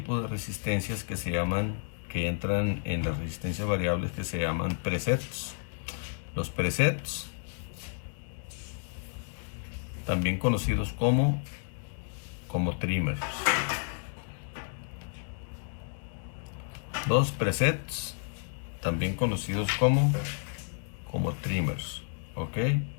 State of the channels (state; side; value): silent; right; 57 dB below the other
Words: de resistencias que entran en las resistencias variables, que se llaman presets. Los presets, también conocidos como trimmers. Los presets, también conocidos como trimmers, ¿ok?